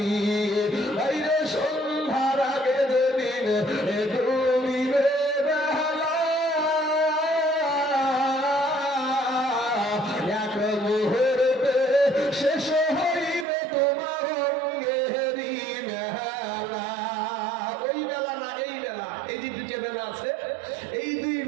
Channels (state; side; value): drops out; left; at 13.5 s